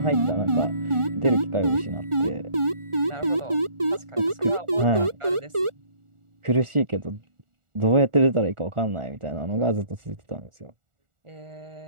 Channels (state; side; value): late; left; 1.4 ms